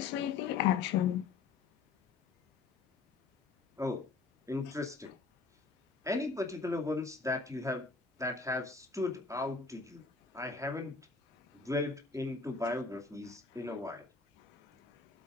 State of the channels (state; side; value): quieter; right; 4.6 dB